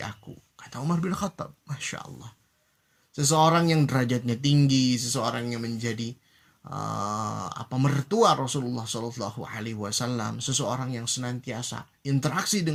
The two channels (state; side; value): identical; both; correlation 1.00